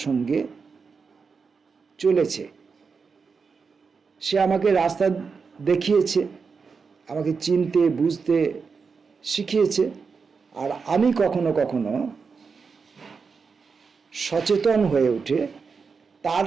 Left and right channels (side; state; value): left; quieter; 5.3 dB